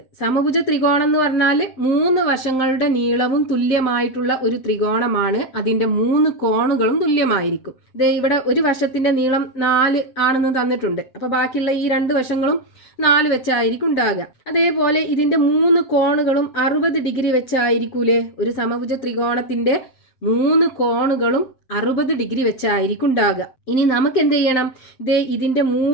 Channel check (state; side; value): late; right; 7.7 ms